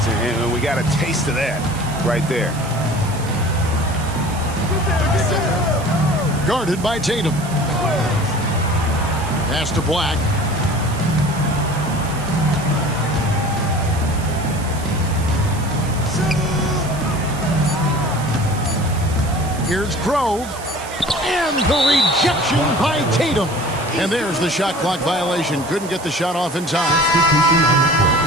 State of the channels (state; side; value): noise; right; hiss, 15 dB below the sound